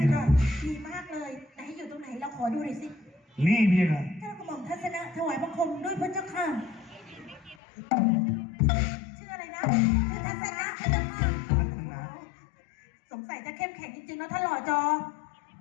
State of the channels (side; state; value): right; drops out; at 7.6 s